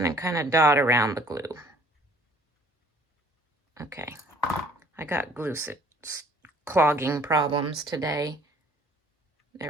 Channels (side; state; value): both; normal; correlation 0.56